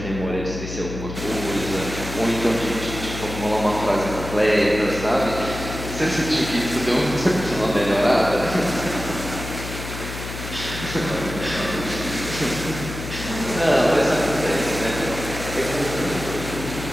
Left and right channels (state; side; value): noise; left; hum, 9 dB below the sound